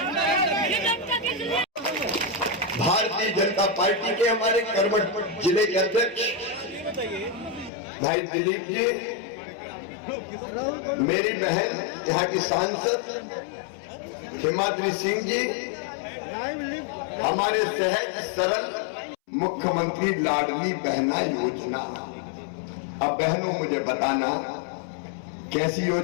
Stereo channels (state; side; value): drops out; right; at 7.7 s